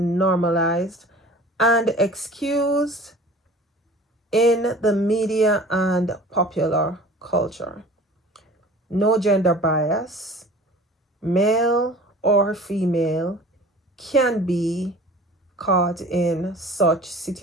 and excused in the media and popular culture. No gender bias, male or female, can be caught in such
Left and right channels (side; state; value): both; normal; correlation 0.43